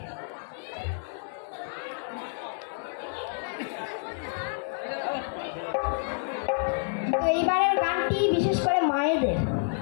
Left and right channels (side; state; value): right; silent; digital silence